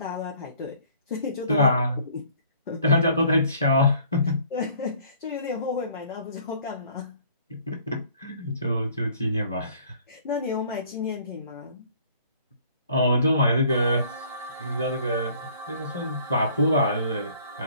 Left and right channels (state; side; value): inverted; both; correlation -0.56